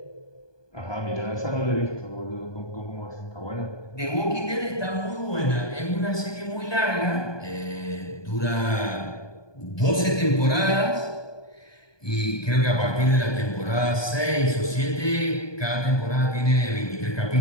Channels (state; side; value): late; right; 1.2 ms